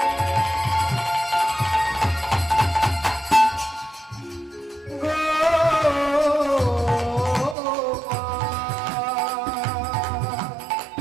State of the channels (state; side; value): drops out; left; at 7.6 s